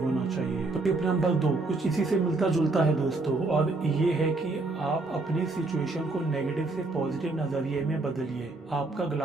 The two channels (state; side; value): quieter; left; 3.3 dB